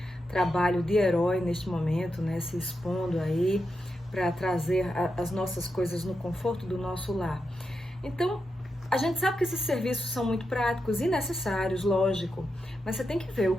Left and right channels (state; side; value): normal; both; correlation 0.87